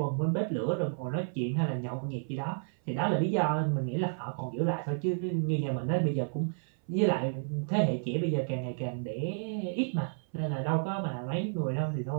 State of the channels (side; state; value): left; silent; 57 dB below the other